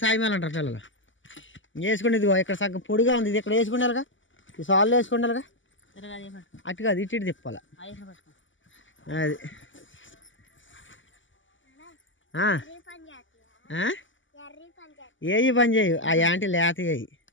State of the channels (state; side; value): late; right; 0.55 ms